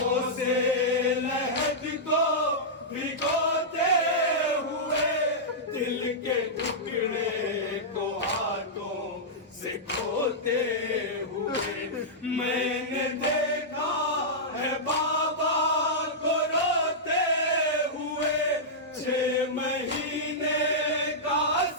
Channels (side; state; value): both; normal; correlation -0.11